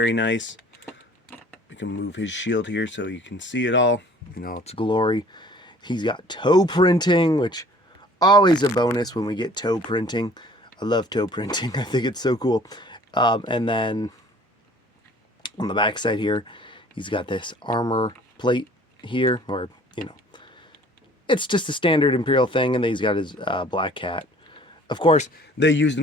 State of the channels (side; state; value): both; normal; correlation 0.52